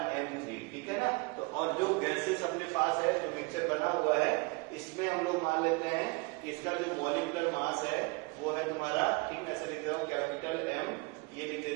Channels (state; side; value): quieter; left; 27.6 dB